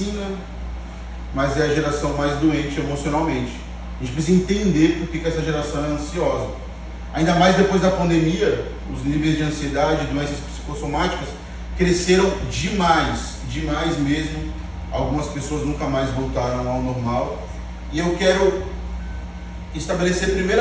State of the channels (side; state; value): both; identical; correlation 1.00